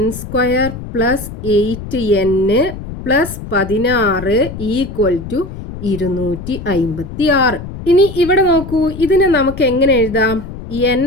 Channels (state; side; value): noise; left; rumble, 10 dB below the sound